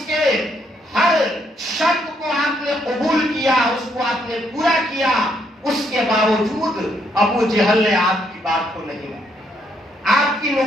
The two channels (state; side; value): normal; both; correlation 0.73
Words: کے ہر شرط کو آپ نے قبول کیا، اس کو آپ نے پورا کیا، اس کے باوجود ابو جہل نے آپ کی بات کو نہیں مانا، آپ کی